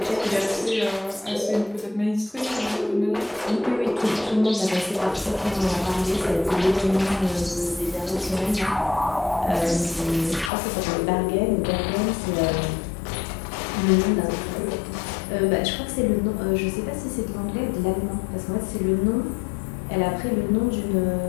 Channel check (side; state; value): right; drops out; at 10.5 s